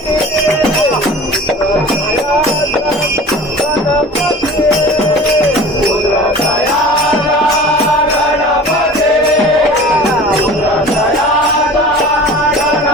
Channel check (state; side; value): normal; both; correlation 0.40